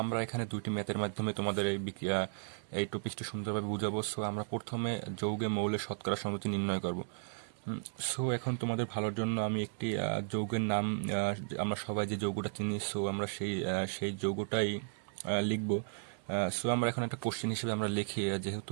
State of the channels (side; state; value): left; silent; 54 dB below the other